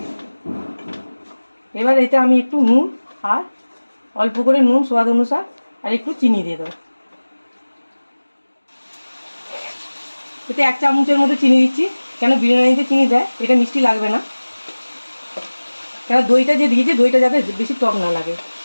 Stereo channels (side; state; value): both; inverted; correlation -1.00